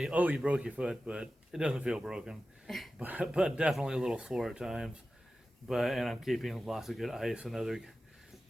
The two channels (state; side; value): normal; both; correlation 0.94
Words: "Oh, you broke your foot," but it doesn't feel broken, but definitely a little sore at times. And I'm keeping lots of good ice, another